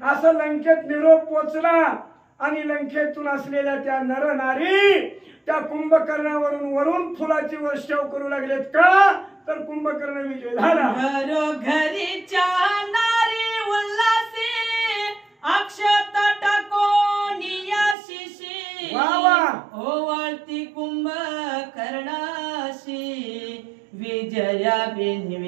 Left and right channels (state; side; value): drops out; left; at 17.9 s